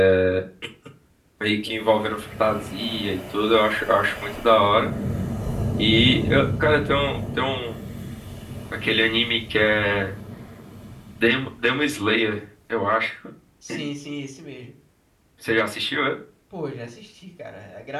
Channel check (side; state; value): both; identical; correlation 1.00